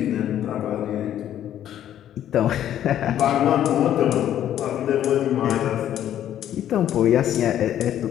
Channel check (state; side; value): quieter; right; 11.1 dB